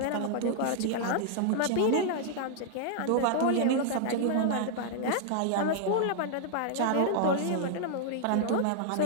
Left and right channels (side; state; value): both; different; correlation -0.01